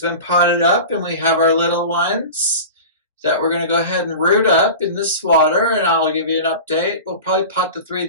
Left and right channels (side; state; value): both; inverted; correlation -0.34